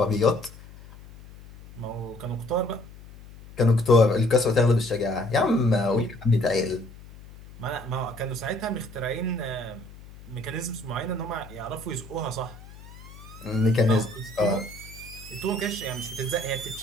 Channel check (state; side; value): noise; left; hum, 18 dB below the sound